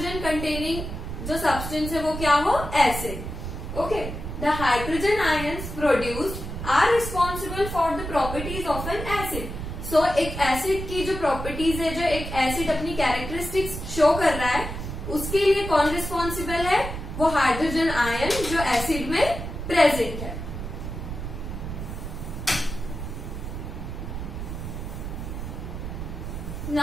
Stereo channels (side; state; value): right; noise; rumble, 7 dB below the sound